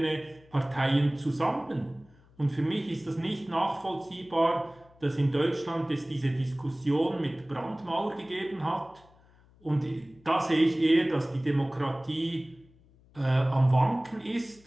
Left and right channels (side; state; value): left; noise; hum, 28 dB below the sound